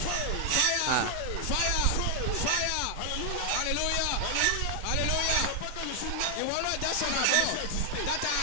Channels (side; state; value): both; different; correlation 0.00